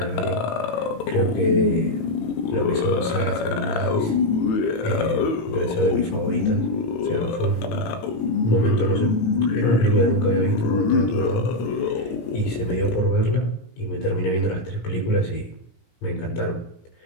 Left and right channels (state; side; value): late; right; 18 ms